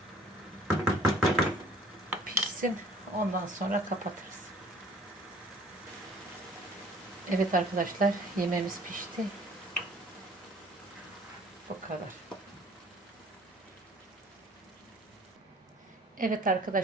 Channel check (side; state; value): both; normal; correlation 0.53